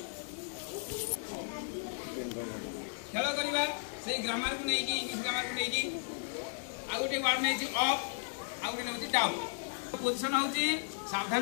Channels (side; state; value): right; silent; digital silence